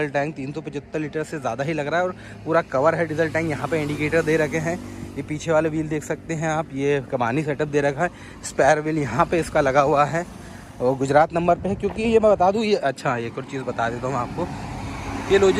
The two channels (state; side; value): identical; both; correlation 1.00